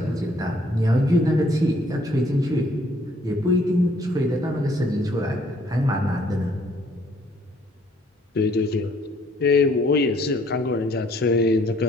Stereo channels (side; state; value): both; normal; correlation 0.63